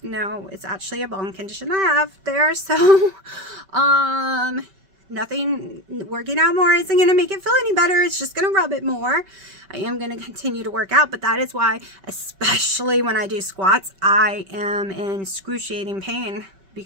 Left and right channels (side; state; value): left; late; 5.2 ms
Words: No, it's actually a bone condition I have there. So nothing, working out more isn't going to make it feel any better. It's just going to rub it more. I am going to continue to work out, but that is why, especially when I do squats, I am in excruciating pain,